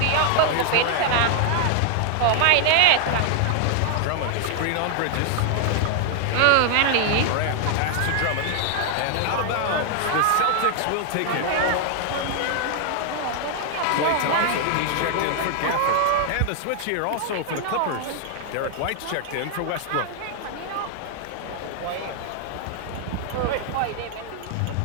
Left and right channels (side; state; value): both; different; correlation 0.00